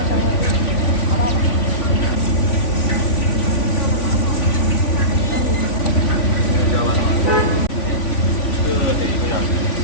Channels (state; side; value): late; right; 3.5 ms